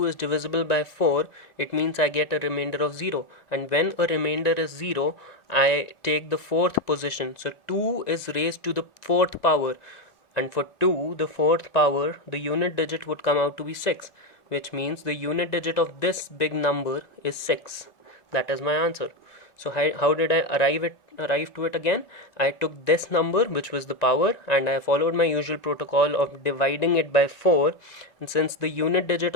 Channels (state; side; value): late; right; 1.4 ms